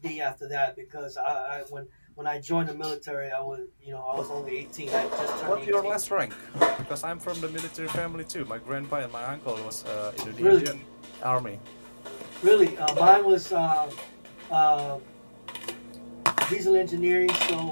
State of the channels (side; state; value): both; inverted; correlation -1.00